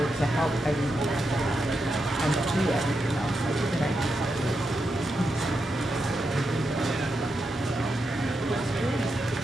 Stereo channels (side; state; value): both; normal; correlation 0.85